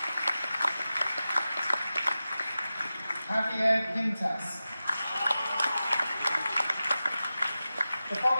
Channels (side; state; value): both; inverted; correlation -0.94